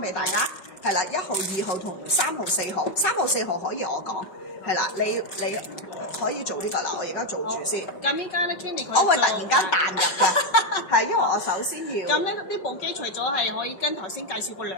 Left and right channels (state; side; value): late; right; 5.4 ms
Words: 大家。係啦，1號、2號同3號、4號，3號、4號可以我講。係啦，你可以做呢個啦，我而家做住先。咁依家咧 Candy 佢我會突然間彈入嘅，係因為我首先要。咁咧呢部機除咗係可以跟頭先介紹過